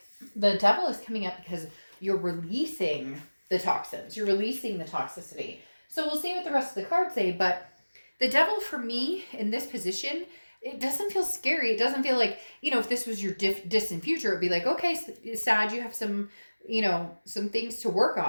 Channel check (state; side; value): inverted; both; correlation -1.00